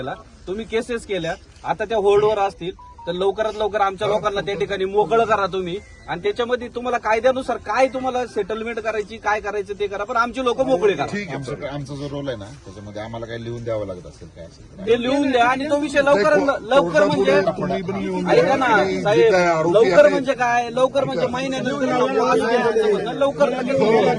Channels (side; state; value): both; identical; correlation 1.00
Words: तुम्ही केसेस केल्या, आता त्या होल्डवर असतील, तर लवकरात लवकर आमच्या लोकांना त्या ठिकाणी मोकळं करा तुम्ही. आणि त्याच्यामध्ये तुम्हाला कायद्यानुसार काय तुम्हाला सेटलमेंट करायची, काय करायचं ते करा, पण आमची लोक मोकळे करा. आमचा जो रोल आहे ना, त्याच्यामध्ये आम्हाला काही लिहून द्यावं लागत असेल काय असेल ते लिहून द्या आणि तो विषय लवकर म्हणजे ऐका ना साहेब, लवकर म्हणजे काय, लवकर म्हणजे महिन्यानंतर लवकर